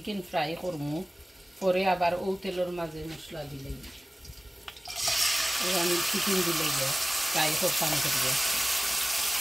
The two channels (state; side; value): normal; both; correlation 0.97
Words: ফ্রাই করমু পরে আবার ও তেলের মাঝে মশলা দিলেই আমি চিকেন দিলে ফ্রাই করতাম করিয়া